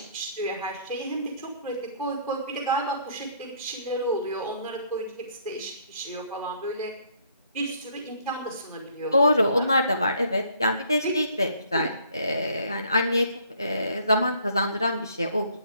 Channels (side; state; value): both; inverted; correlation -0.63